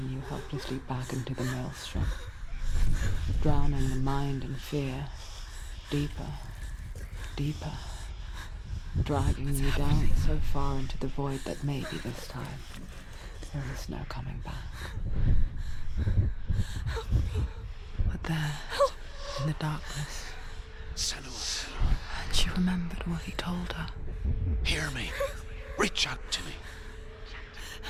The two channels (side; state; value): both; identical; correlation 1.00